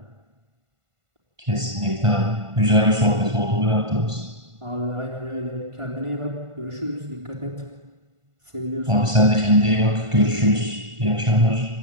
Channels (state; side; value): late; left; 1.5 ms